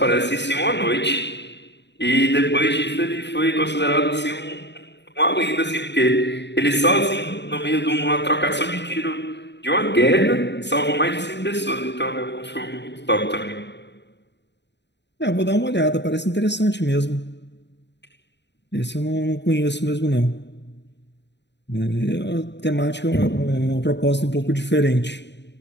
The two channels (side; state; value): right; late; 0.51 ms